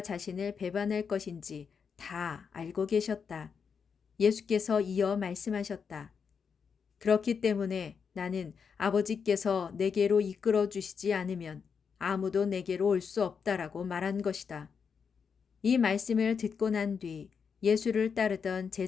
자신을 배반할 것인지 다 알고 계셨다. 예수께서 이어 말씀하셨다. 그렇기 때문에 나는 아버지께서 내게로 이끌어 주시지 않으면 아무도 내게로 올 수 없다라고 말한 것이다. 이 말씀을 듣고 난 뒤 예수를 따르던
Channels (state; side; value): quieter; right; 6.2 dB